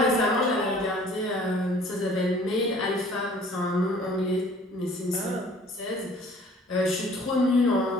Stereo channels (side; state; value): both; normal; correlation 0.53